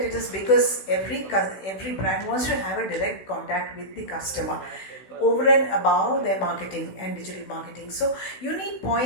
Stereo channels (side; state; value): right; late; 15 ms